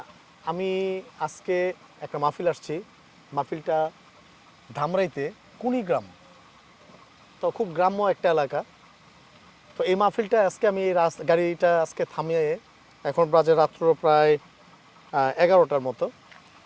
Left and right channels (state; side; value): identical; both; correlation 1.00